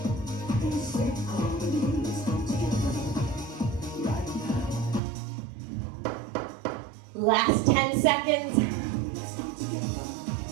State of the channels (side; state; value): left; drops out; at 5.0 s